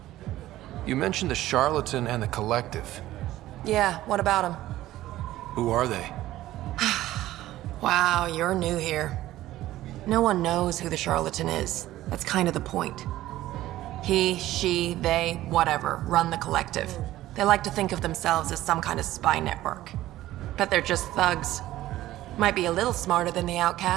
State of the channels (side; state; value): left; quieter; 15.1 dB